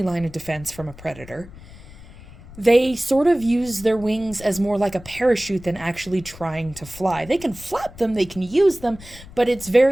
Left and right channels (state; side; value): noise; left; rumble, 18 dB below the sound